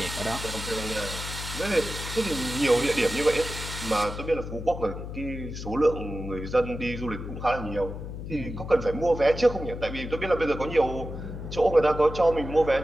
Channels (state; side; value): noise; left; hum, 8 dB below the sound